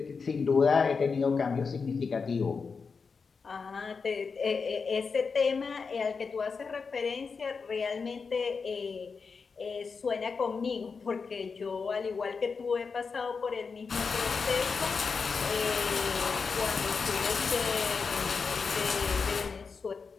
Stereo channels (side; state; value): right; quieter; 5.1 dB